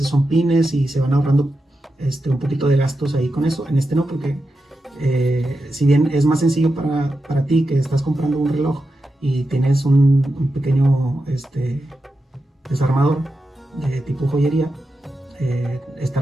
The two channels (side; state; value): both; normal; correlation 0.89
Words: son pines y se van ahorrando un poquito de gastos ahí con eso. En este no, porque si bien es más sencillo para ti que estás comprando un reloj y tienes un pequeño desarmador de tipo joyería,